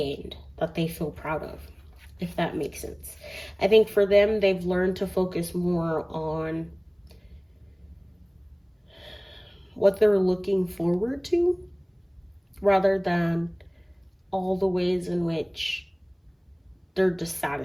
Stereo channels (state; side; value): identical; both; correlation 1.00